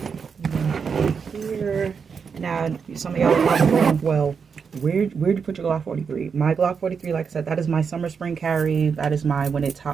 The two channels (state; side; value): quieter; left; 6.1 dB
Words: here. Now, some of y'all are probably going, well, where'd you put your Glock 43? My Glock 43, like I said, that is my summer spring carry. That is my when it's